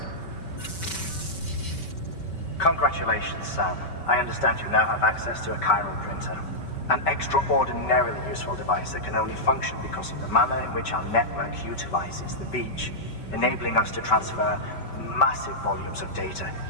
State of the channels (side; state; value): right; late; 5.2 ms